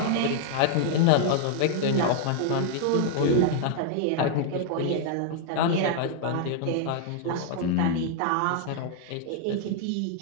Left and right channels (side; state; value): both; different; correlation 0.00